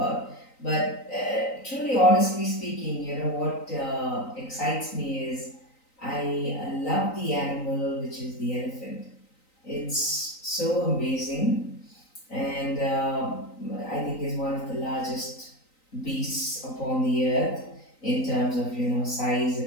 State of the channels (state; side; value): late; right; 3.9 ms